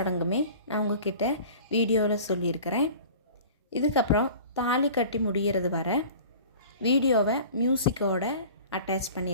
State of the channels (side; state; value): both; inverted; correlation -0.42